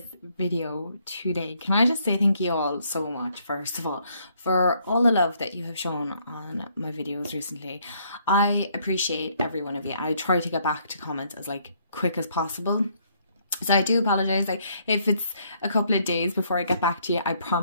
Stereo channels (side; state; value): both; inverted; correlation -0.68